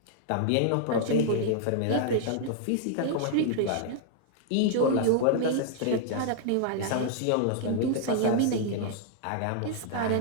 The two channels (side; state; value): both; different; correlation -0.01